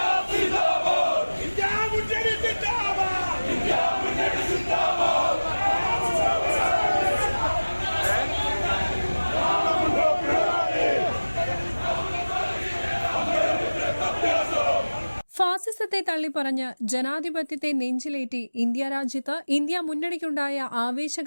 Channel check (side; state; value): both; inverted; correlation -1.00